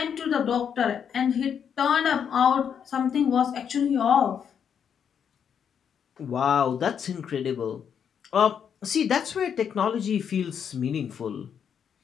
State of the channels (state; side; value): quieter; right; 7.8 dB